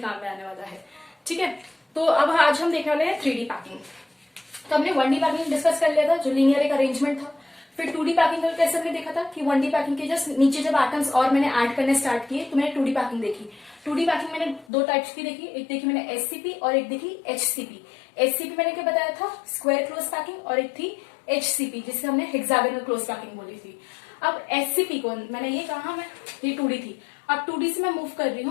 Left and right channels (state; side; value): drops out; right; at 14.7 s